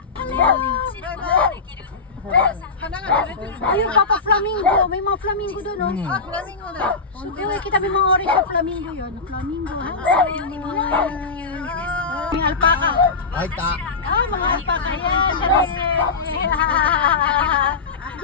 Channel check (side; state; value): right; quieter; 4.4 dB